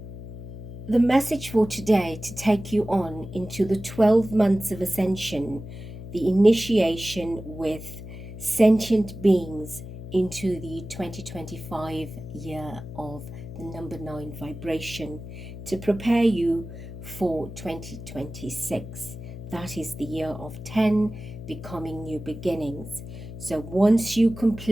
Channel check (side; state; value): left; noise; hum, 11 dB below the sound